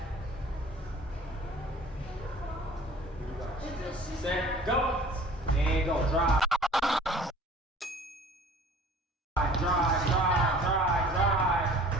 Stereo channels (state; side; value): normal; both; correlation 0.49